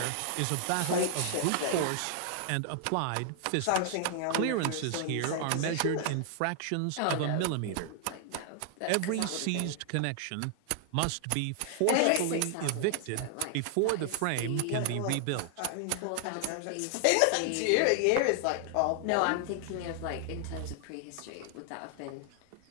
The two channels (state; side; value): different; both; correlation 0.00